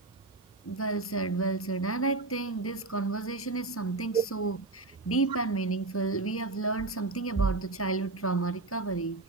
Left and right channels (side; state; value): left; quieter; 3.3 dB